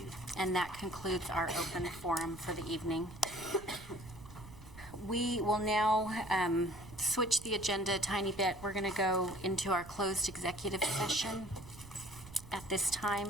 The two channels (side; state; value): right; noise; rumble, 17 dB below the sound